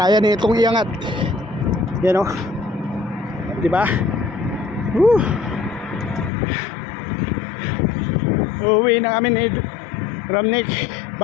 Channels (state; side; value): drops out; right; at 6.3 s